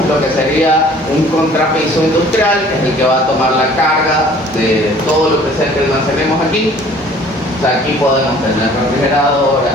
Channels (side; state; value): both; normal; correlation 0.52